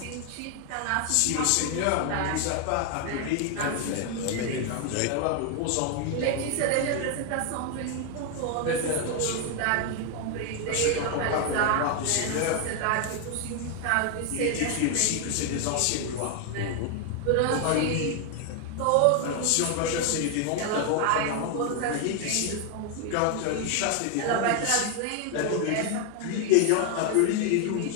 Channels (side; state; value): both; different; correlation 0.01